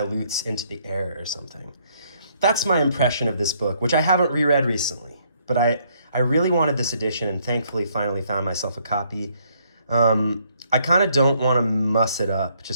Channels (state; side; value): inverted; both; correlation -0.68